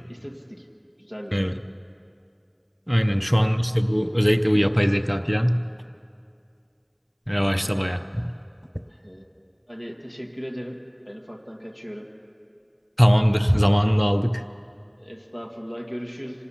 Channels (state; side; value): identical; both; correlation 1.00